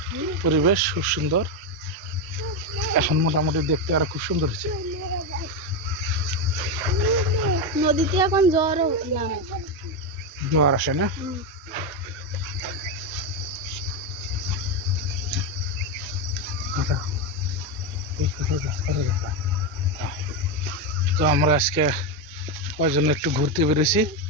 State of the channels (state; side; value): normal; both; correlation 0.09